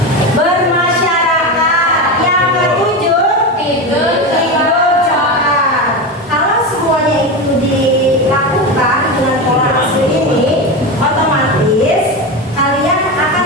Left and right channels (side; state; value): both; normal; correlation 0.19